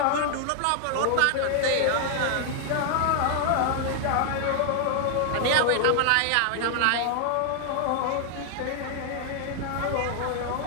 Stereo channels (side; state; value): both; different; correlation 0.00